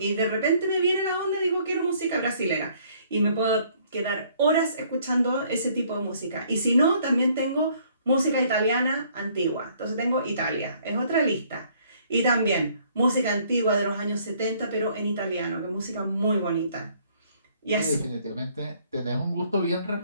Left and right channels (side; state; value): both; inverted; correlation -0.62